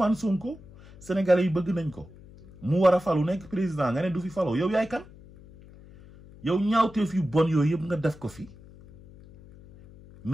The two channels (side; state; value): left; noise; hum, 21 dB below the sound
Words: Sonko Sénégalais yi bëgg nañ ko mu war a falu nekk président nga ne du fi faloo yow yaay kan yow ñaawteef yu bon yooyu yëpp nga def ko fi